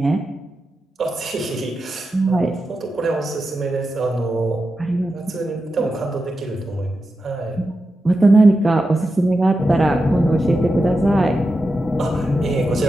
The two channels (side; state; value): both; normal; correlation 0.90